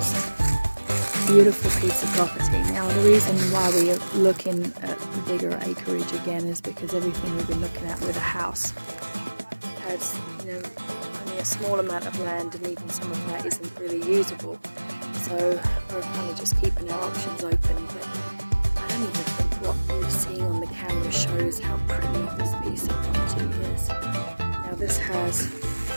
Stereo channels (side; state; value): both; inverted; correlation -1.00